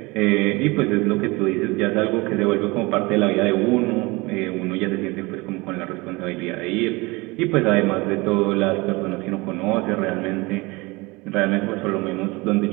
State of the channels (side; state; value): left; quieter; 24.3 dB